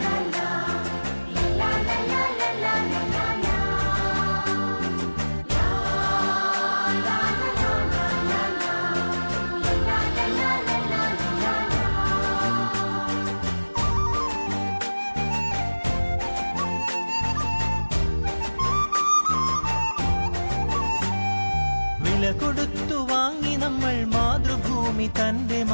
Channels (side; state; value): both; inverted; correlation -1.00